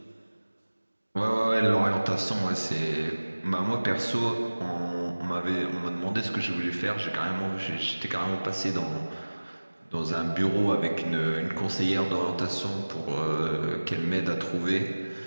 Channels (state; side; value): inverted; both; correlation -1.00